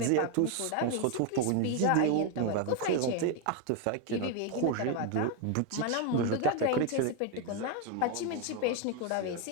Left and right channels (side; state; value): both; different; correlation 0.01